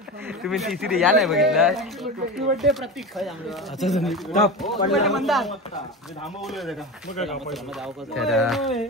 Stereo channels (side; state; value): both; normal; correlation 0.25